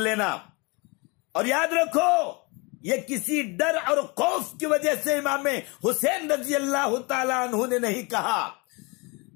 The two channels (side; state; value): right; quieter; 28.5 dB